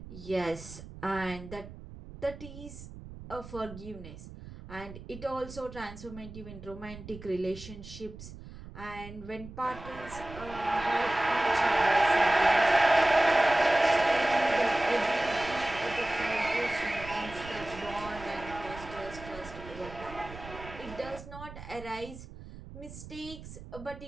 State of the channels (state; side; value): noise; right; rumble, 14 dB below the sound